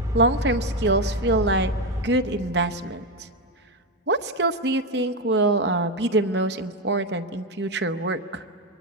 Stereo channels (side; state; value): both; normal; correlation 0.10